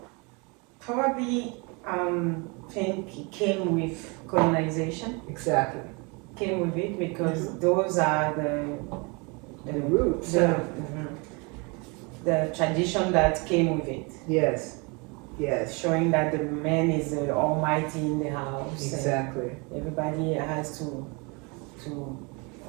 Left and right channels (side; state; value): left; quieter; 30.2 dB